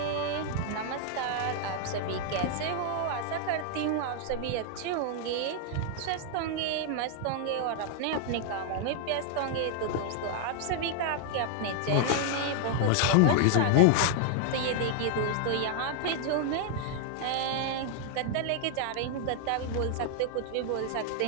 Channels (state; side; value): different; both; correlation 0.00